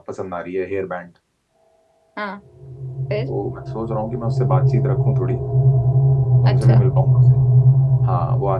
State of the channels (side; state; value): both; identical; correlation 1.00